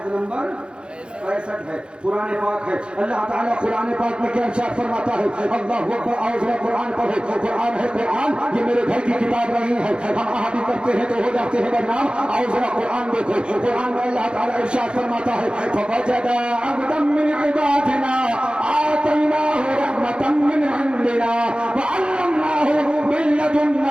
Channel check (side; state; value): left; late; 0.054 ms